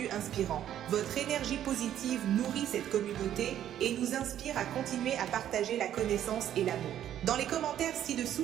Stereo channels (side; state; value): left; quieter; 11.1 dB